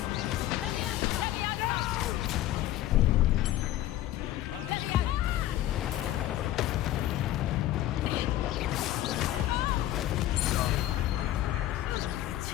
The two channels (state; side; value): quieter; right; 13.9 dB